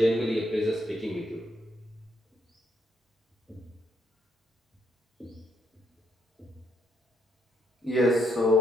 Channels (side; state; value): both; normal; correlation 0.74